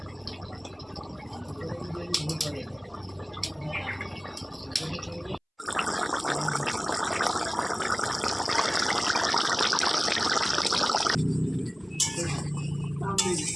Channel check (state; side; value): identical; both; correlation 1.00